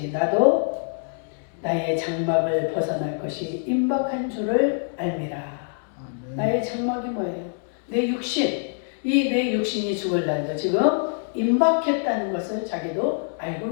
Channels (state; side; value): silent; right; digital silence